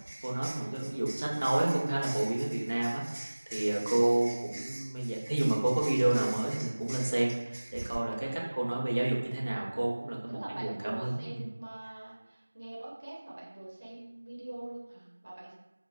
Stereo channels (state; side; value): inverted; both; correlation -1.00